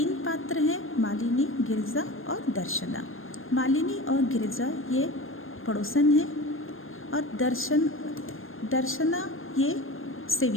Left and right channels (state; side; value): late; right; 0.59 ms